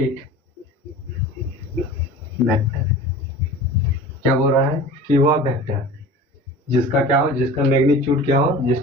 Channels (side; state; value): both; normal; correlation 0.39